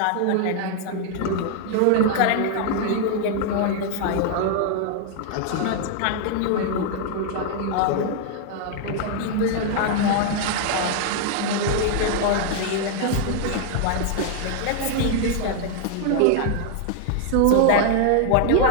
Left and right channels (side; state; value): both; different; correlation 0.00